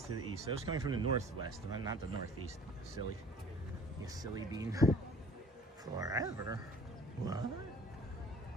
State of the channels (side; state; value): both; normal; correlation 0.49